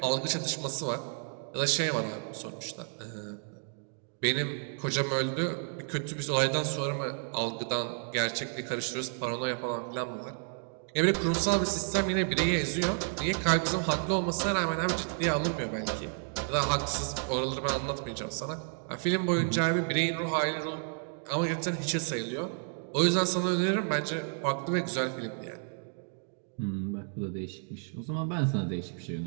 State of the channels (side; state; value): left; silent; 57 dB below the other